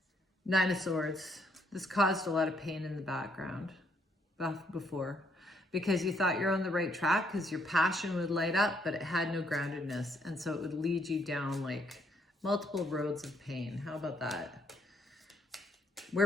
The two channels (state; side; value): normal; both; correlation 0.70